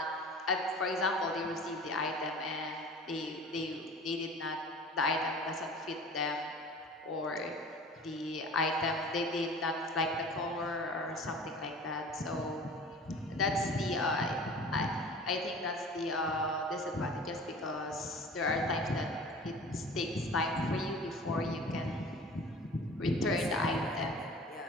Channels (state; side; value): normal; both; correlation 0.42